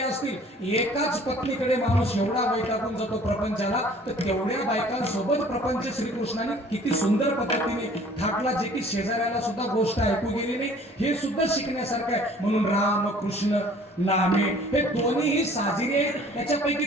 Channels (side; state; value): both; normal; correlation 0.52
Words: असतील, एकाच पत्नीकडे माणूस एवढा वैतागून जातो प्रपंचाला, तर तेवढ्या बायकांसोबत प्रपंच श्रीकृष्णाने किती सुंदर पद्धतीने थाटला, जे की शेजाऱ्याला सुद्धा गोष्ट ऐकू गेली नाही. हे सुद्धा शिकण्यासारखं आहे. म्हणून राम कृष्ण नामे हे दोन्हीही साजिरे. त्याच्यापैकी